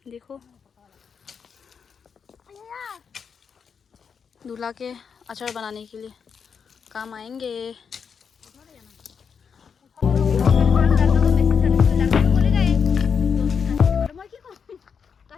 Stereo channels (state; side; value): quieter; right; 6.5 dB